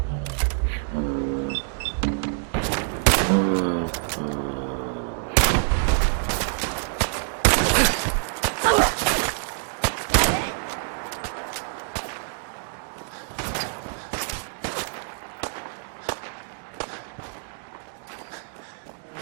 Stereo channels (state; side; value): silent; left; 61 dB below the other